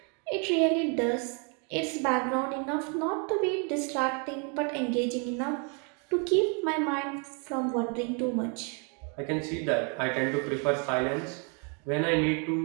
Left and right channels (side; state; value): left; quieter; 37.1 dB